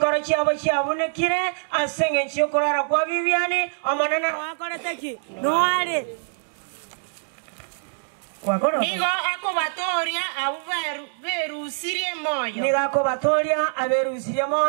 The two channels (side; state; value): left; silent; digital silence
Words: chiabo chiabunekire asenge nchiyokorara kwa Viviani omonene wakoreteki no ali nigo akobatoria aberusirie moyo nigo akobatoria aberusirie